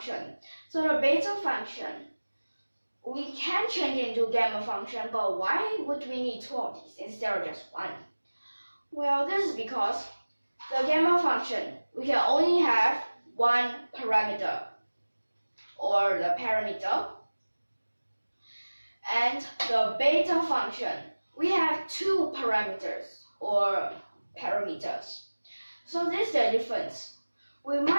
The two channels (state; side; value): inverted; both; correlation -1.00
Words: So the beta function, we can change it into gamma function, but why would we need two of these instead of just one? Well, this is because the gamma function, we can only have one parameter, or the parameter. And the beta function, we have two parameters, or parameters. So this is the difference. We